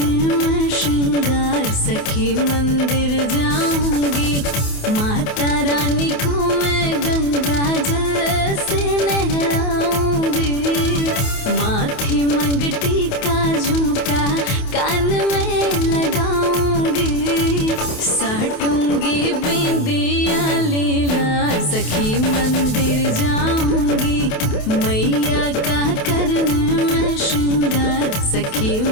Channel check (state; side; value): late; right; 28 ms